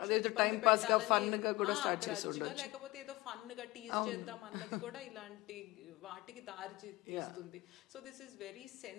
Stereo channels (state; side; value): quieter; right; 20.5 dB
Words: లేకపోతే ఏదో ఫన్ గా టీజ్ చేద్దాం అన్నది కూడా ఇలాంటి వాటికి దారి తీస్తుంది. So this is very